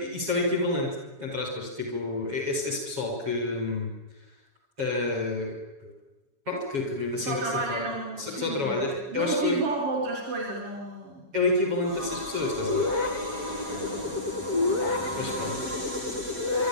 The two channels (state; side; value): late; left; 7.2 ms